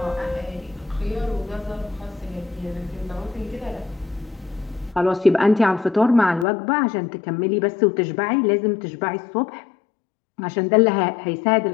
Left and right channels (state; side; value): drops out; right; at 6.5 s